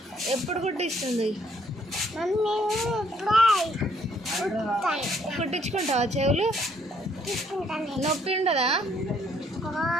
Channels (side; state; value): both; normal; correlation 0.67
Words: ఎప్పుడు కుట్టిస్తుంది? మమ్మీ కుట్టించుకుంటావా చెవులు? నొప్పి ఉండదా?